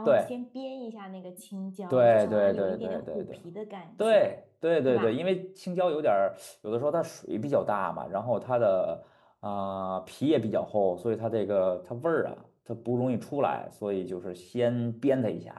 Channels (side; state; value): both; identical; correlation 1.00